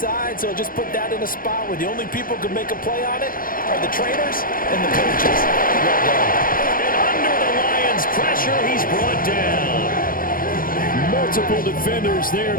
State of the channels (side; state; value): right; late; 0.41 ms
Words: so just put that in a spot where the only people who can make a play on it are the trainers and the coaches. Well done. And under the Lions' pressure, he's brought down. Multiple defenders there